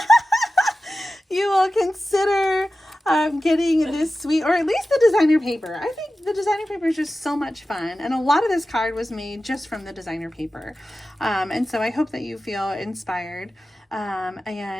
you will consider getting this suite, or at least the designer paper. I think the designer paper is just so much fun, and a lot of this card was made just from the designer paper. And so I hope that you feel inspired.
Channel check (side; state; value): both; normal; correlation 0.94